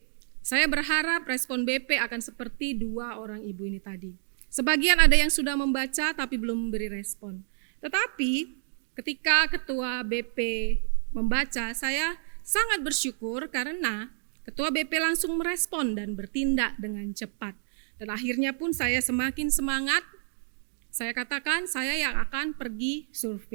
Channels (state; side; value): silent; left; digital silence